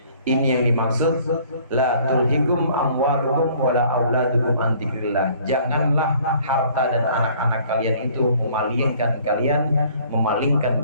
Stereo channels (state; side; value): inverted; both; correlation -0.56